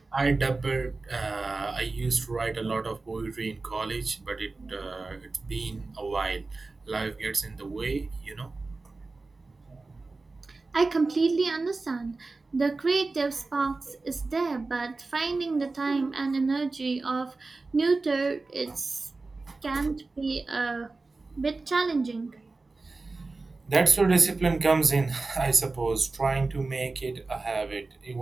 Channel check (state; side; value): quieter; left; 3.6 dB